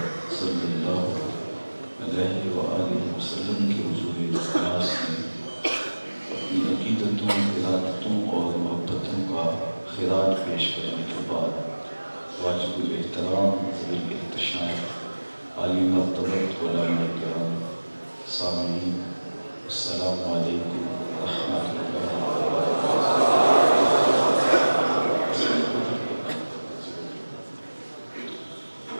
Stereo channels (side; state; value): both; inverted; correlation -1.00